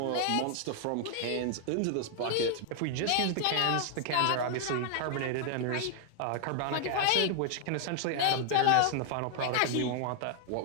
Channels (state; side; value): different; both; correlation 0.00